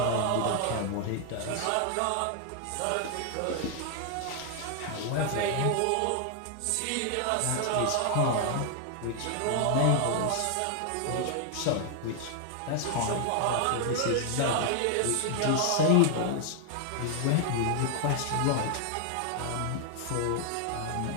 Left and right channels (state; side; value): different; both; correlation 0.00